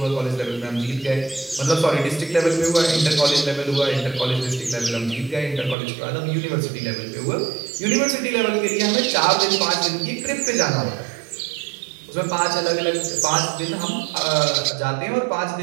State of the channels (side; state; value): left; drops out; at 5.8 s